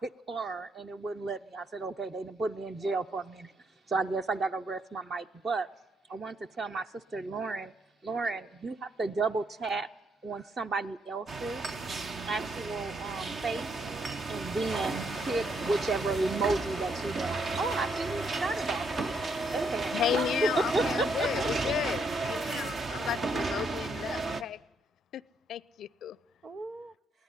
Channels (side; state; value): both; normal; correlation 0.74